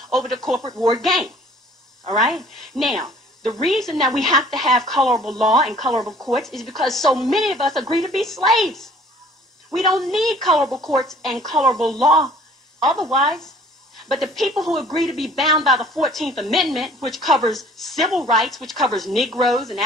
over the corporate ward game. All right? Now, the reason that we have to have colorable law and colorable courts is because so many of us agree to be slaves. We don't need colorable courts and colorable law otherwise. But the people who agree to be bound by the 14th Amendment, which covers civil rights, which covers Negroes and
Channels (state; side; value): normal; both; correlation 0.53